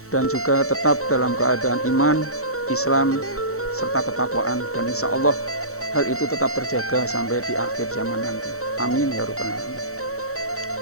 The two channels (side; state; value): right; late; 0.64 ms